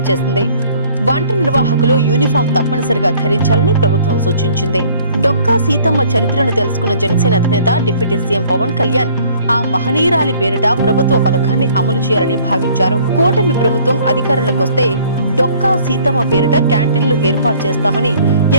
చేసింది. వంట నిర్వాహకులు యూనిఫామ్ తప్పనిసరిగా ధరించాలని ప్రభుత్వం సూచించింది. డొక్కా సీతమ్మ చరిత్రను తెలుసుకున్న జనసేన అధినేత డిప్యూటీ సీఎం పవన్ కళ్యాణ్ ఆ మహనీయురాలి పేరిట ప్రభుత్వ పథకాన్ని అమలు చేయాలని భావించారు. కూటమి ప్రభుత్వం అధికారంలోకి వస్తే డొక్కా సీతమ్మ పేరిట క్యాంటీన్లు ఏర్పాటు చేస్తామని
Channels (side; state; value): both; inverted; correlation -0.56